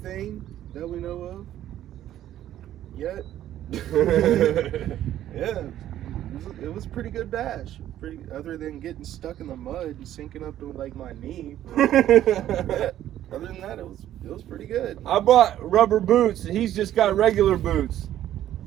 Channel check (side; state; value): left; quieter; 12.2 dB